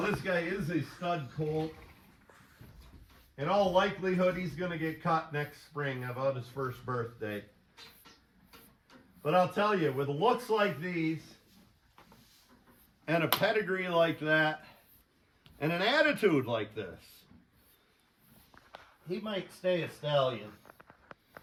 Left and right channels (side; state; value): both; identical; correlation 1.00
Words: this guy is a stud colt. In all likelihood, he's going to get caught next spring about his first birthday. But I'll tell you, with looks like these, and a pedigree like that, and an attitude like this, he might stay a stallion,